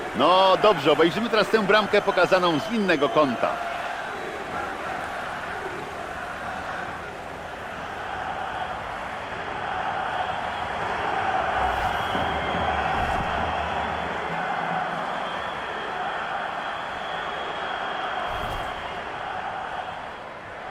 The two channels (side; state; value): both; identical; correlation 1.00